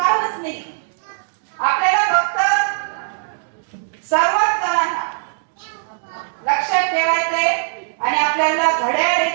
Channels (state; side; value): silent; left; 66 dB below the other